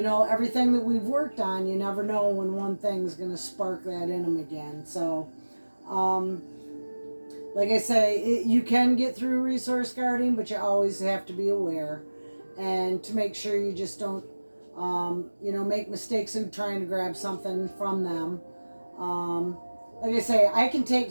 that we've worked on, you never know when one thing's going to spark that in him again. So, like I say, you can get through resource guarding, but you always have to be aware and to make sure you just don't, make mistakes in trying to grab something from them. Like I say, I can take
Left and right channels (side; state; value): both; inverted; correlation -1.00